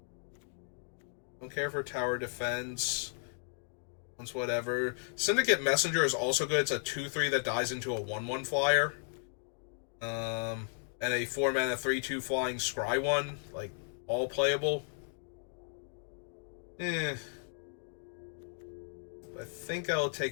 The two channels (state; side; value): silent; right; 55 dB below the other